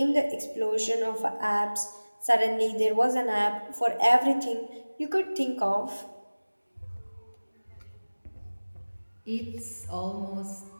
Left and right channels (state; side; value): inverted; both; correlation -1.00